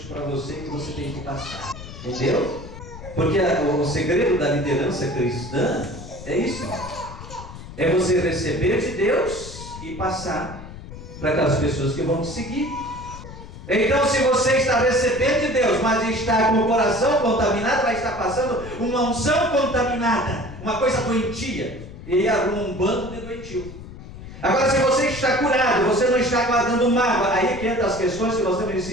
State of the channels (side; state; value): left; noise; rumble, 14 dB below the sound